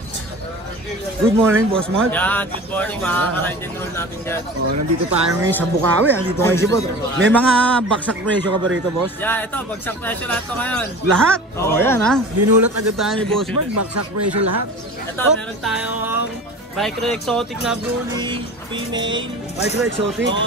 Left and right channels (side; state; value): both; normal; correlation 0.37